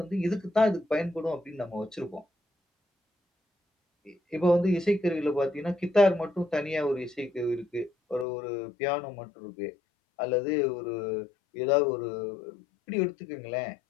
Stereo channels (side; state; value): right; drops out; at 8.2 s